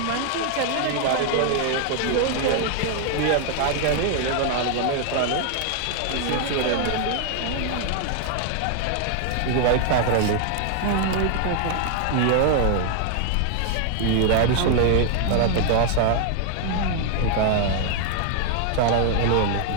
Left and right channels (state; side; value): different; both; correlation 0.00